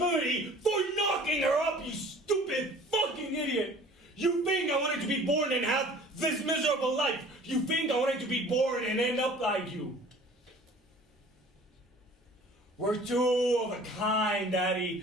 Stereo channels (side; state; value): both; normal; correlation 0.48